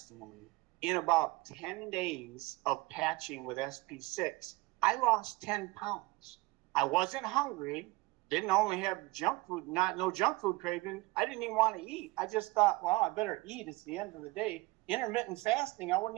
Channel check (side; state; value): left; quieter; 22.4 dB